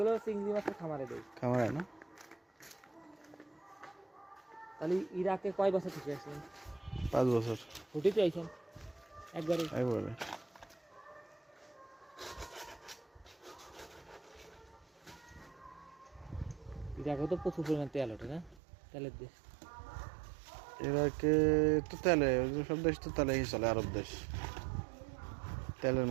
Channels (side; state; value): left; drops out; at 18.6 s